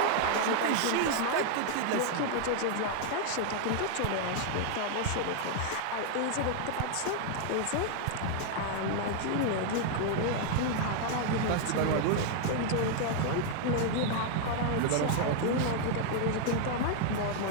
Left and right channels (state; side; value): different; both; correlation 0.00